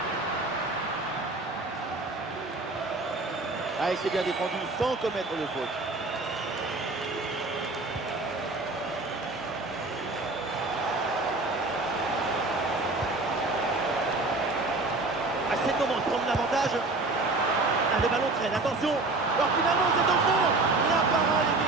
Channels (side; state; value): left; quieter; 3.2 dB